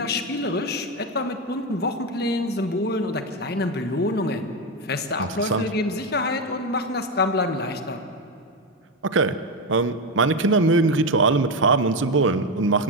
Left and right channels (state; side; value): normal; both; correlation 0.12